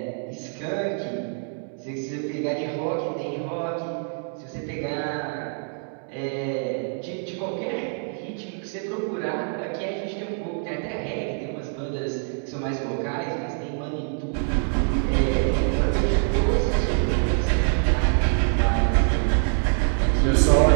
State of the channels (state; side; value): silent; left; 61 dB below the other